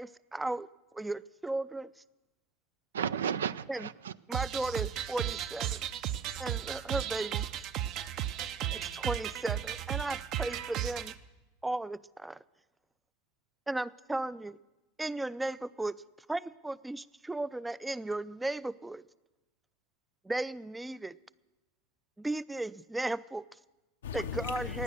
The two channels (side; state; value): left; quieter; 3.8 dB